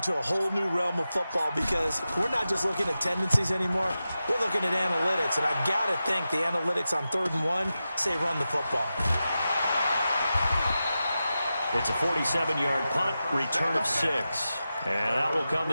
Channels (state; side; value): inverted; both; correlation -0.92